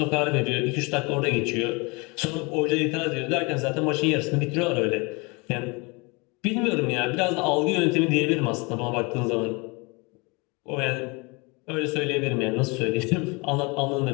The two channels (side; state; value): right; quieter; 28.3 dB